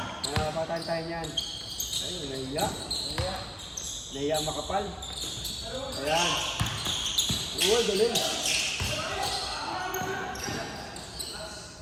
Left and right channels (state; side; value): identical; both; correlation 1.00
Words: Nakapatan tayo niyan. Ayun, nahiya. Nahiya makapal. Ayan. Uy, galing.